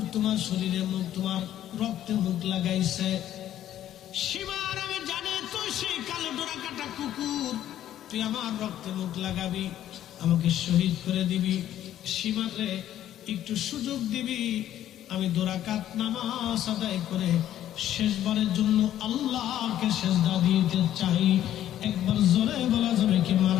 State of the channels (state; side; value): quieter; right; 11.9 dB